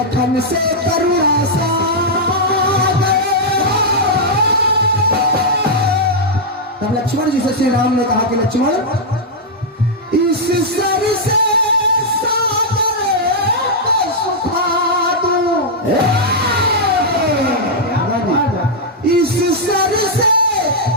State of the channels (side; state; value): both; normal; correlation -0.05